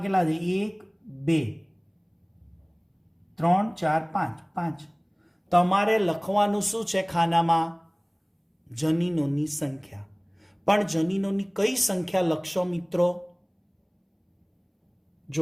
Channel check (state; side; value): identical; both; correlation 1.00